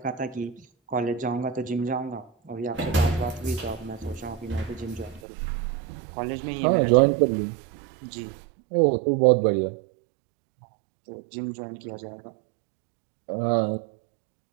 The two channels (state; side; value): drops out; left; at 5.2 s